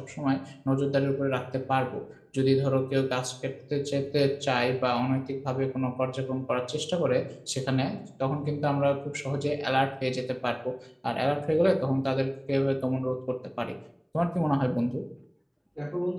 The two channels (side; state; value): both; identical; correlation 1.00